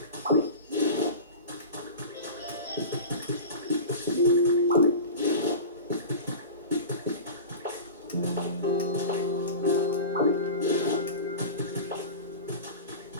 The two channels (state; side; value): inverted; both; correlation -0.32